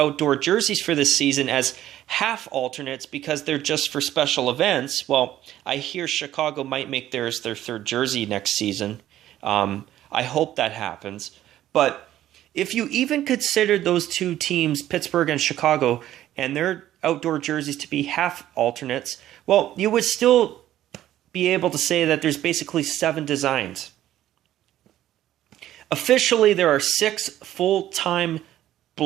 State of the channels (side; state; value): left; quieter; 13.0 dB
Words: jerseys for this season as half alternates because they're just for special events, well, I hear Chicago might make theirs their third jersey next season. I hope that happens. But if you even consider those 2 teams, Pittsburgh and Chicago, and their outdoor jerseys to be half alternates, well, you would still be able to say that there's basically 7 designs. Officially, there are 6 full-time